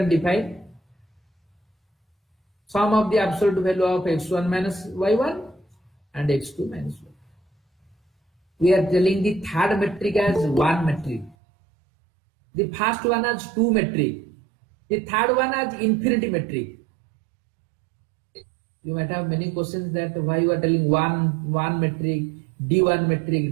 define sum of the absolute value of x1 minus y1 and x2 minus y2. We are telling the third metric as one metric. The first one as two metric. The third one as infinity metric. You might have many questions that why you are telling one metric, D1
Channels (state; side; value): drops out; left; at 11.4 s